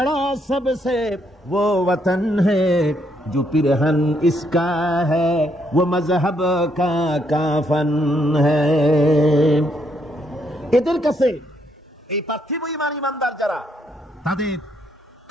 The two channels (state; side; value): normal; both; correlation 0.74